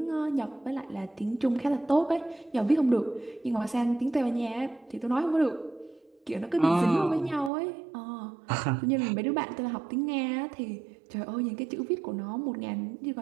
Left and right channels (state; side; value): drops out; left; at 7.5 s